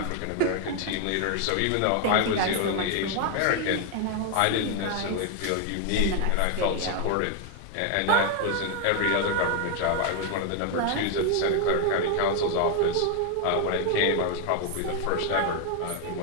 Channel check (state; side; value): different; both; correlation 0.01